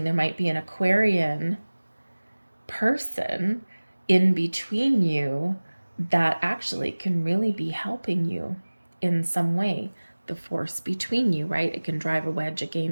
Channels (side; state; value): both; inverted; correlation -1.00